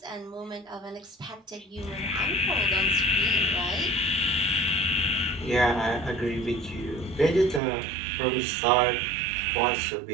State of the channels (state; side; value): drops out; left; at 7.6 s